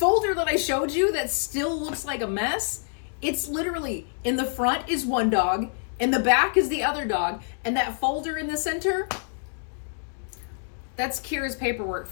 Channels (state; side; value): silent; right; digital silence